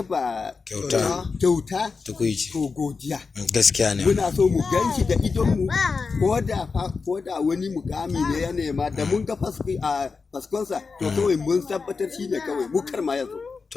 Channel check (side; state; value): right; quieter; 4.7 dB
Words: kyauta to godiya. Gaskiya ne. Muna so mu gan shi da idonmu, ko da wani mukami ne ya nema, da mun ga faskonsa to kawai mun tabbatar shi ne kawai mu kar ma yazo.